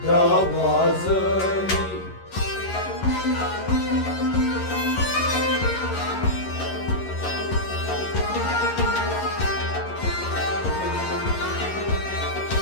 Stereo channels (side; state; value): right; late; 11 ms